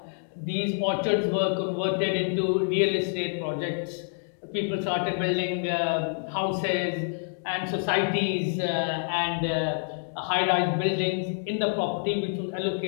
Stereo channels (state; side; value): silent; right; digital silence